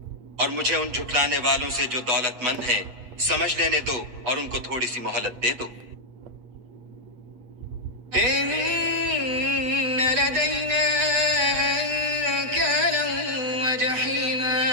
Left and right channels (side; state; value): left; late; 8.5 ms